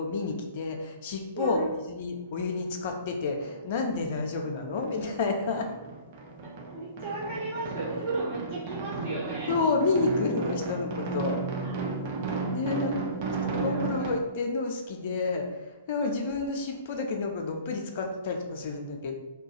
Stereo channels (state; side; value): inverted; both; correlation -0.45